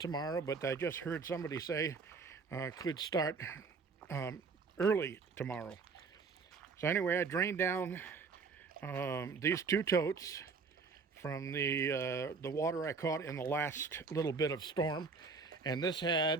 but I just heard somebody say could start early tomorrow. So anyway, I drained down these 2 totes from the water I caught in the last little bit of storm. And this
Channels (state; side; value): quieter; left; 4.8 dB